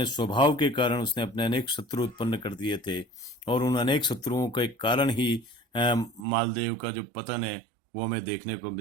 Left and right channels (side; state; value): left; drops out; at 6.2 s